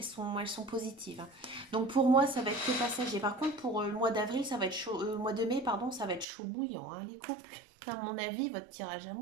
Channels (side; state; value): left; drops out; at 6.2 s